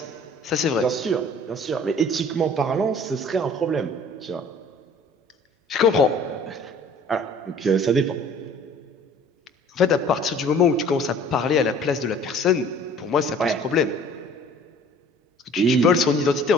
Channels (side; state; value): both; normal; correlation 0.50